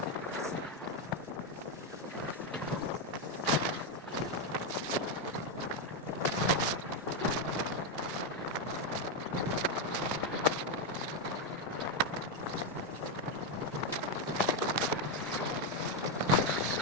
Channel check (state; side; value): normal; both; correlation 0.05